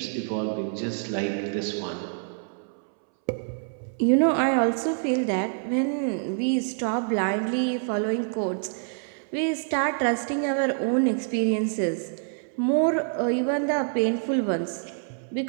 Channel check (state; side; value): silent; left; 61 dB below the other